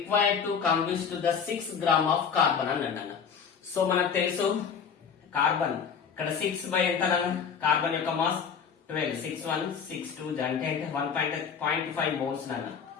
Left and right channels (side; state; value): right; quieter; 6.7 dB